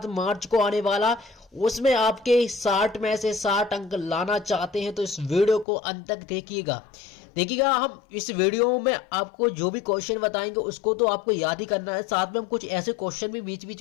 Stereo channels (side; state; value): right; drops out; at 5.7 s